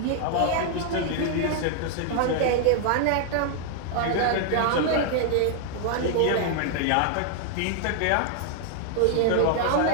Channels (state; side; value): different; both; correlation 0.00